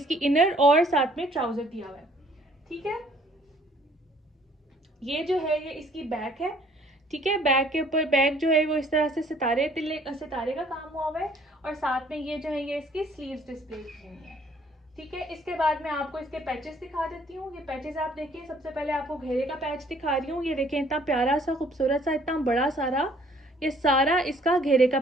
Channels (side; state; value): both; normal; correlation 0.60